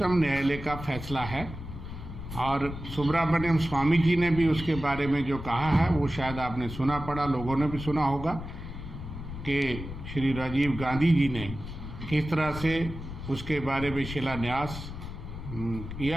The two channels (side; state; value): left; noise; rumble, 10 dB below the sound